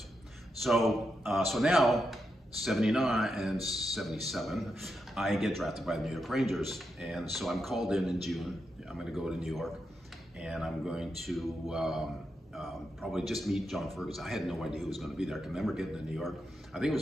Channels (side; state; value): both; normal; correlation 0.85